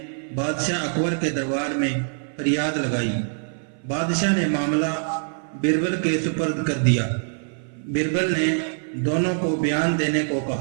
बादशाह अकबर के दरबार में फरियाद लगाई। बादशाह ने मामला बिरबल के सुपर्द कर दिया। बिरबल ने दोनों को बयान देने को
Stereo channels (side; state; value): left; silent; 59 dB below the other